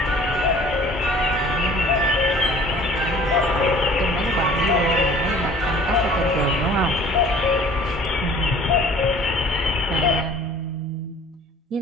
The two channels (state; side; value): normal; both; correlation 0.50